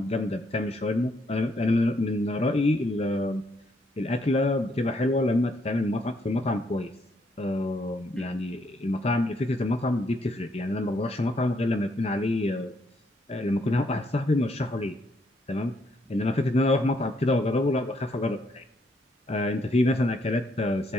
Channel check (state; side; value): normal; both; correlation 0.72